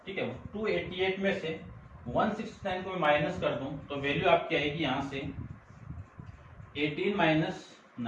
ठीक है, 288 में से 169 को मैं माइनस कर दूं तो वैल्यू आपकी आएगी यहां से 18 माइनस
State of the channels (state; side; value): identical; both; correlation 1.00